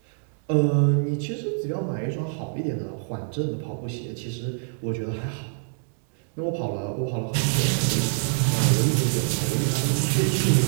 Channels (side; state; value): left; silent; digital silence